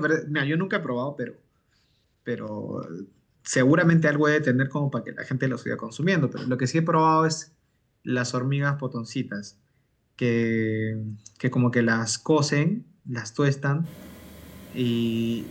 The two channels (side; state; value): both; identical; correlation 1.00